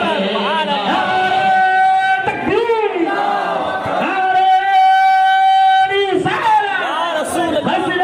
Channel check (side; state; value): both; identical; correlation 1.00